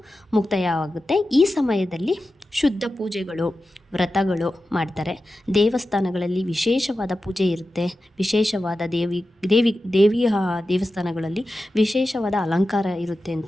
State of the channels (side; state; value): both; normal; correlation 0.93